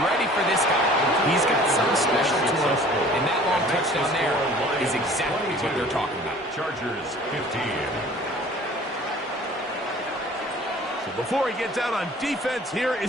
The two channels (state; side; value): normal; both; correlation 0.49